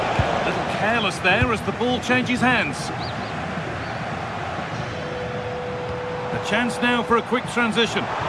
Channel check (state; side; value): identical; both; correlation 1.00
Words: A little careless there as the ball changes hands. A chance now for a quick transition.